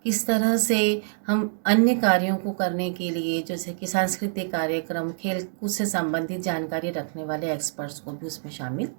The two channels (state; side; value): silent; left; digital silence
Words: किस तरह से हम अन्य कार्यों को करने के लिए जैसे कि सांस्कृतिक कार्यक्रम, खेल कूद से संबंधित जानकारी रखने वाले एक्सपर्ट्स को भी उसमें शामिल